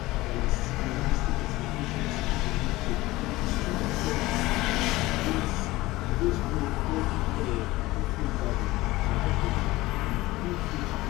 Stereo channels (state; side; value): quieter; right; 19.0 dB